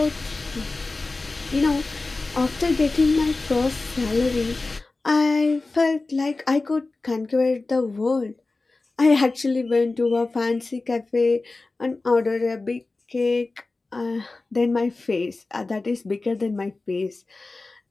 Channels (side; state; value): right; quieter; 3.4 dB